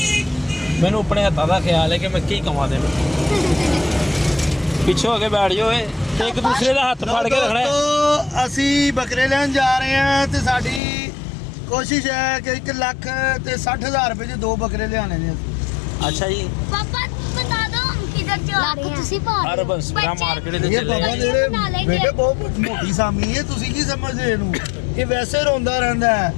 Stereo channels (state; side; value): drops out; right; at 10.8 s